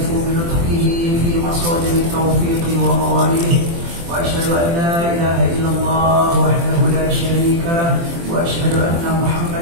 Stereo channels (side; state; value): left; late; 24 ms